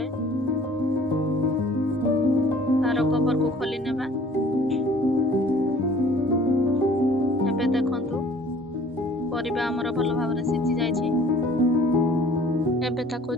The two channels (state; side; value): normal; both; correlation 0.52